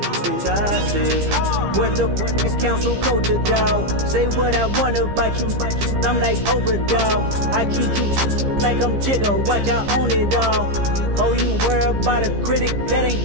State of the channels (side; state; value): left; late; 15 ms